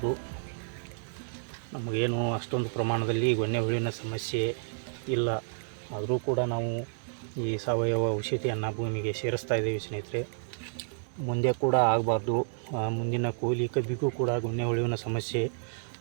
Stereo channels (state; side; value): silent; left; digital silence